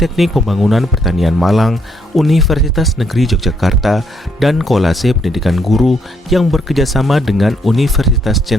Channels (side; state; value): both; normal; correlation 0.72